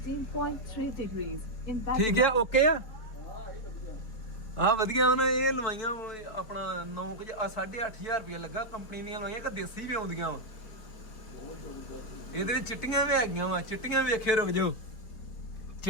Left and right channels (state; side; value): late; right; 4.3 ms